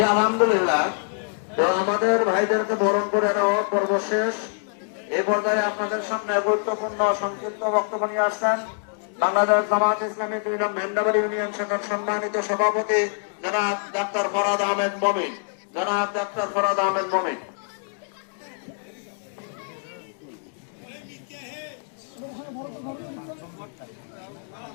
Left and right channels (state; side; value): silent; right; digital silence